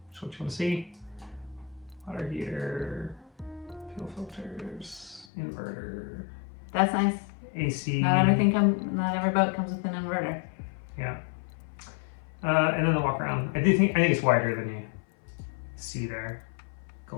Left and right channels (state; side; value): drops out; right; at 5.2 s